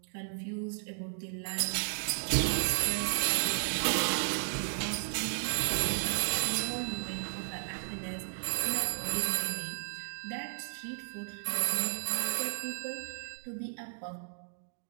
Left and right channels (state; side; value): silent; left; digital silence